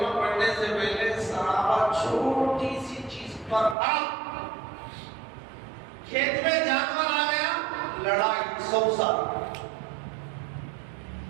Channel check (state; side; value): drops out; left; at 3.8 s